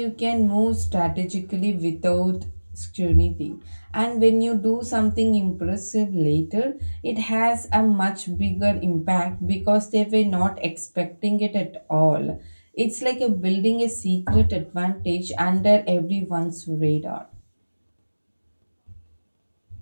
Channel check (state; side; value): inverted; both; correlation -1.00